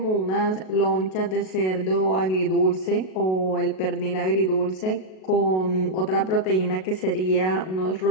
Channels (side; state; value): right; late; 37 ms